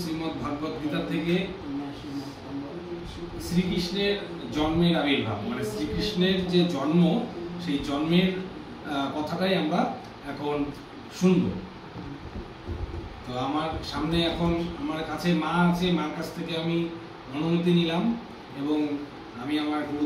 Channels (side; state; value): both; identical; correlation 1.00